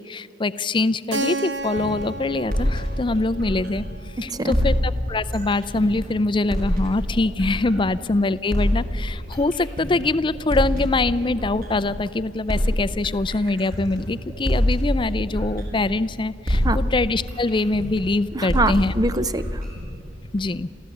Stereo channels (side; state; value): both; normal; correlation 0.69